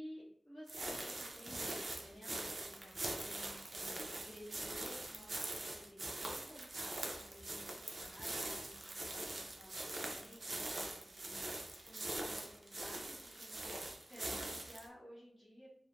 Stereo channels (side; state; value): both; normal; correlation 0.94